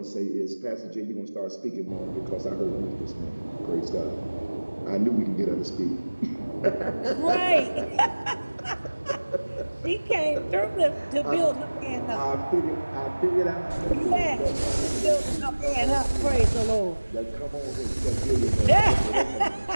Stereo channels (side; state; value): both; inverted; correlation -1.00